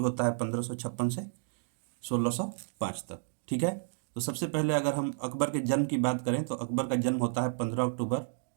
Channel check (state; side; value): silent; left; digital silence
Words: होता है 1556 से 1605 तक। ठीक है। तो सबसे पहले अगर हम अकबर के जन्म की बात करें तो अकबर का जन्म होता है 15 अक्टूबर